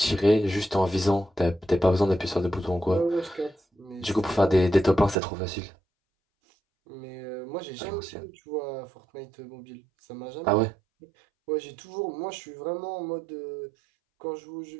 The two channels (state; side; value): drops out; left; at 5.2 s